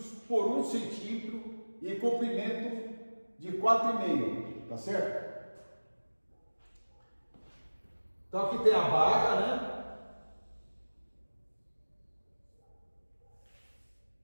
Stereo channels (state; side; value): inverted; both; correlation -1.00